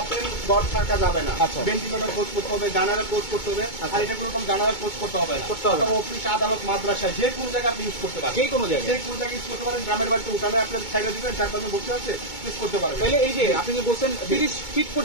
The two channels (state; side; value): late; right; 2.2 ms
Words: ডট থাকা যাবে না, আচ্ছা। ভেন্টিলেটর কোর্স করতে হবে, গানারের কোর্স করতে হবে, আর এটা কোনো রকম গানারের কোর্স করতে হবে না, করতে হবে না। আপনার অফিস, আদালত, মাদ্রাসা, যে কোনো জায়গায় আপনি ইউজ করতে পারেন, যে কোনো জায়গায়। যে কোনো জায়গায় ইউজ করতে পারেন। গ্রামের বাড়িতে উঠানে আপনার ছাইড়া দিবেন, তার পাশে বসে আছে, ইউজ করতে পারবেন। তাহলে এই যে আপনি যে বলছেন 30 ফিট